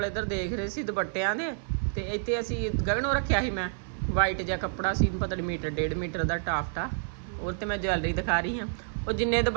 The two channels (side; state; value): left; silent; digital silence